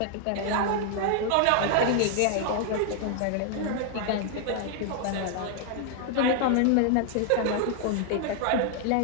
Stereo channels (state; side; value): different; both; correlation 0.00